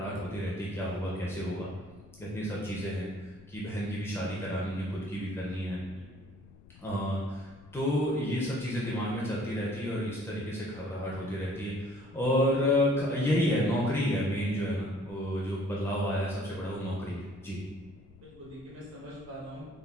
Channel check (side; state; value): left; noise; rumble, 22 dB below the sound